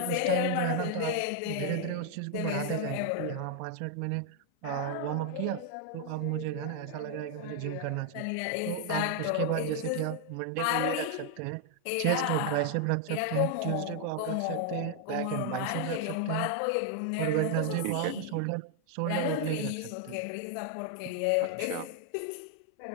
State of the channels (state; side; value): different; both; correlation 0.00